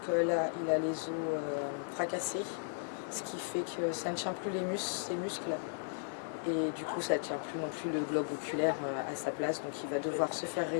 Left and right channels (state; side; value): silent; right; 54 dB below the other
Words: là, il a les os fracassés, ce qui fait que ça ne tient plus ses muscles. Et du coup, ça ne tient plus non plus le globe oculaire à sa place. Donc il va devoir se faire